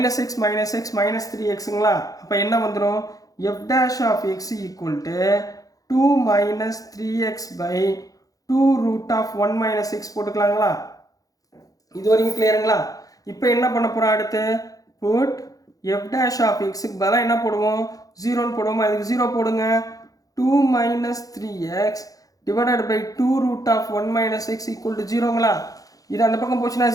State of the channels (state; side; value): late; right; 0.17 ms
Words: minus X -3xங்களா. அப்போ என்ன வந்துடும் F dash of X equal to 2 minus 3x by 2 root of 1 minus X போட்டுக்கலாங்களா. இது வரைக்கும் கிளியருங்களா. இப்போ என்ன பண்ண போகிறோம் அடுத்து புட் எஃப் டேஷ் ஆஃப் எக்ஸுக்கு பதிலாக என்ன போடுவோம் 0ன்னு போடுவோமா. அதுக்கு 0 போடுங்க. 2 minus 3x divided by 2 root of 1 minus X equal to 0ங்களா. இது அந்த பக்கம் போச்சுன்னா